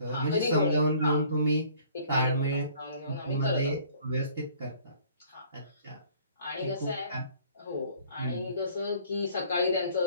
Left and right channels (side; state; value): both; inverted; correlation -0.55